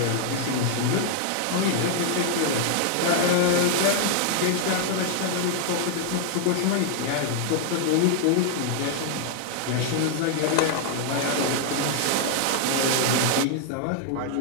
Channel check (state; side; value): different; both; correlation 0.00